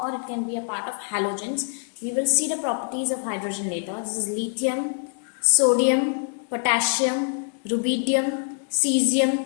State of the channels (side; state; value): right; silent; 62 dB below the other